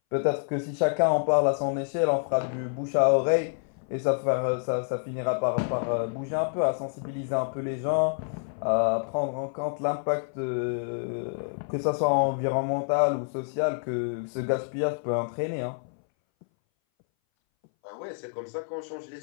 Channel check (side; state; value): right; silent; 60 dB below the other